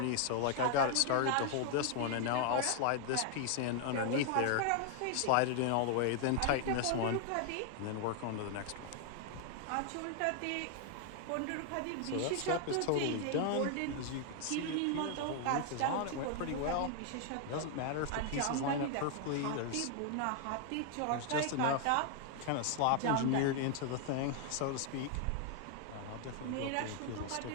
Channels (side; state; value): both; different; correlation 0.00